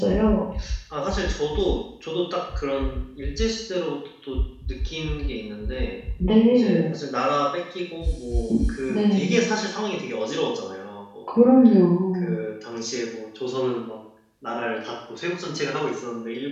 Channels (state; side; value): identical; both; correlation 1.00